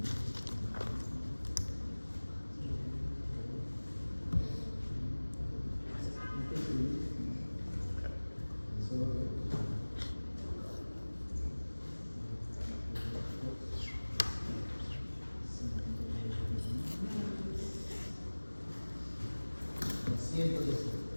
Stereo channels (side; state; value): both; inverted; correlation -1.00